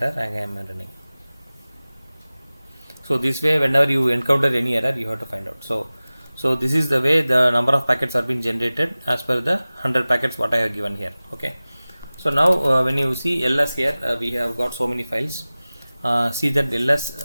Again I am running. So this way, whenever you encounter any error, you have to find out. So this is the way the number of packets are being generated as per the 100 packets what I have given here. Okay. So now when you see ls here, we have got so many files. See that ls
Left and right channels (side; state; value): both; inverted; correlation -0.98